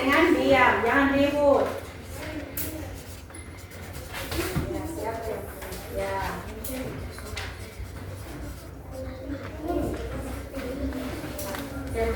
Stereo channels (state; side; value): identical; both; correlation 1.00